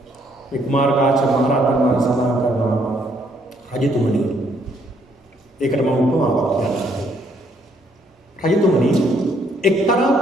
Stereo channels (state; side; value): normal; both; correlation 0.68